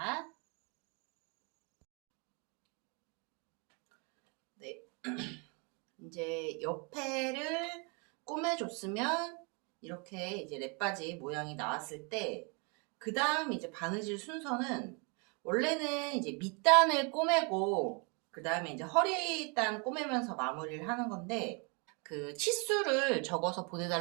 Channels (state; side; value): quieter; left; 33.7 dB